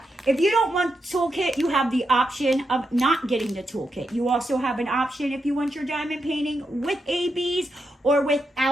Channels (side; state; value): both; normal; correlation 0.84